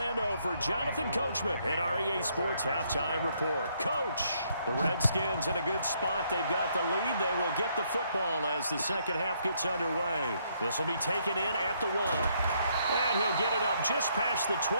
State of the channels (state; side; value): inverted; both; correlation -0.71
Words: for Jonathan Coachman at REA Sports Halftime Report. Coach, the Redskins in a good spot. They've got the lead. They will get the football as the second half gets underway. This will be taken in at the 1. And he'll get it up just past the